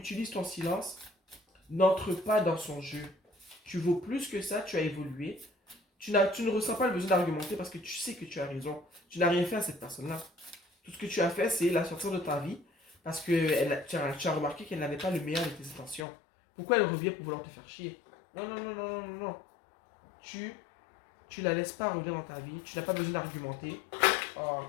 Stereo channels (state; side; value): drops out; right; at 16.1 s